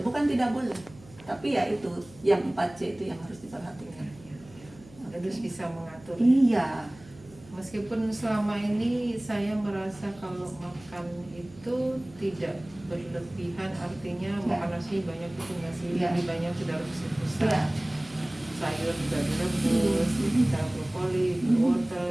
tidak boleh. Tapi ya itu yang 4C itu yang harus diperhatikan. Harus bisa mengatur. Iya. Meskipun selama ini saya merasa kalau makan itu tidak berlebihan, artinya makan nasi banyak itu nasi, lebih banyak sudah rebus Ya. sayur juga direbus, kita brokoli, wortel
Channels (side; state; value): right; noise; hum, 22 dB below the sound